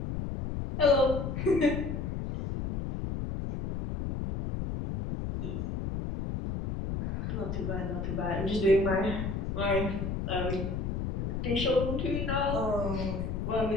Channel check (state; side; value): noise; left; rumble, 3 dB below the sound